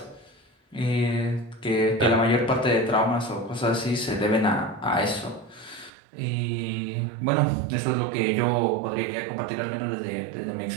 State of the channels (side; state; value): left; drops out; at 5.9 s